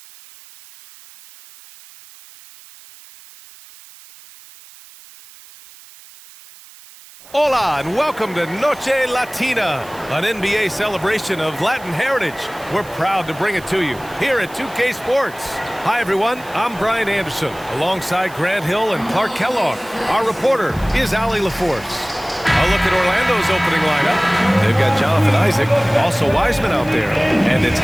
Hola and welcome to Noche Latina, an NBA celebration of Latin heritage. We're proud to bring it to you here at 2K Sports. Hi everyone, I'm Brian Anderson, alongside Grant Hill and Clark Kellogg. Our reporter is Allie LaForce. A look at Orlando's opening lineup. They've got Jonathan Isaac, also Wiseman out there, and it's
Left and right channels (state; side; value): noise; right; hiss, 21 dB below the sound